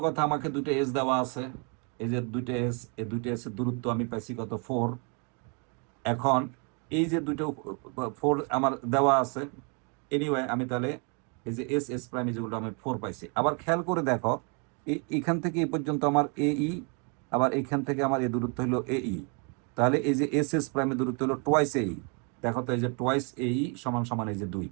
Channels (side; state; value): left; quieter; 36.5 dB